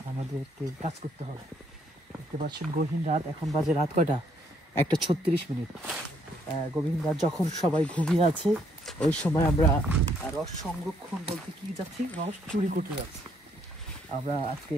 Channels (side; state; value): both; normal; correlation 0.70